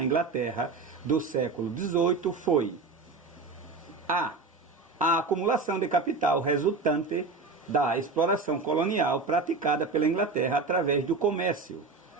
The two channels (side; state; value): left; quieter; 4.0 dB